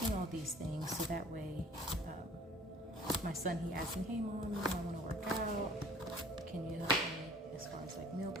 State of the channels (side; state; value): both; normal; correlation 0.51